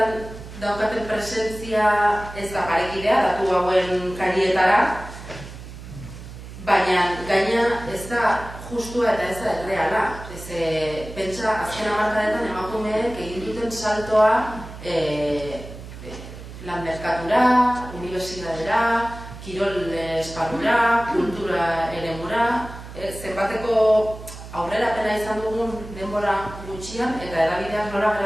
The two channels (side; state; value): right; noise; hum, 13 dB below the sound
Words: daukaten presentzia ez da parekidea, datu hauen karietara, baina gaina ez da justua eta ez da erreala. Pentsa, azken hamarkadetan emakumeek egin duten saltoa lan merkatura, unibertsitatera, kirol esparrura, kultura eremura, zenbateko aurrerapena izan dugun denbora gutxian eta edabideak nola